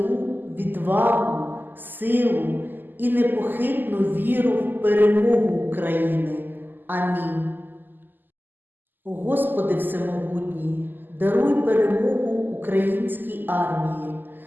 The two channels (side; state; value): left; late; 0.089 ms